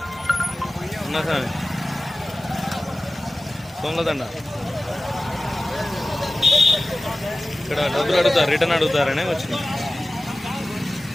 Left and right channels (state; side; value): normal; both; correlation 0.95